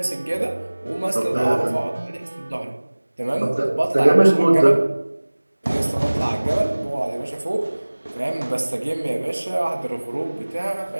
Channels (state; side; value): inverted; both; correlation -1.00